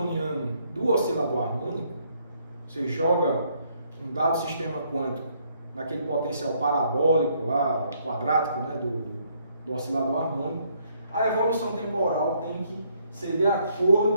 do oscilador harmônico, você joga um dado sistema quântico naquele potencial parabólico lá, quadrático, né, do oscilador harmônico, a evolução temporal tem que ser de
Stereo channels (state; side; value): inverted; both; correlation -0.69